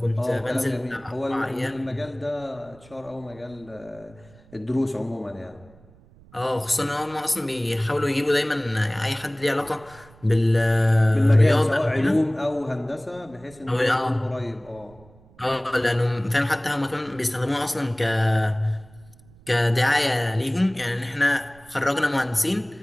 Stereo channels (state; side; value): noise; right; rumble, 25 dB below the sound